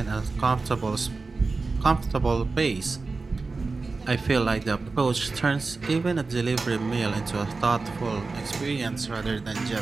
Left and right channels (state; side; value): quieter; left; 3.9 dB